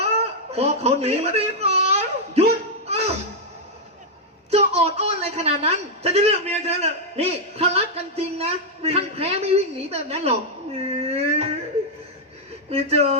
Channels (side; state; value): both; normal; correlation -0.02